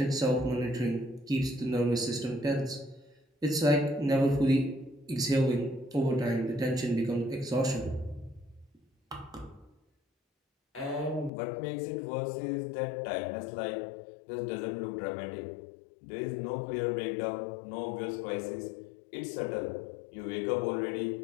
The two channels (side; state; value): right; drops out; at 11.3 s